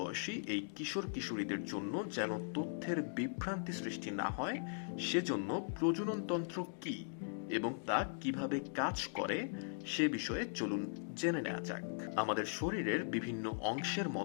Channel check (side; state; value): right; silent; digital silence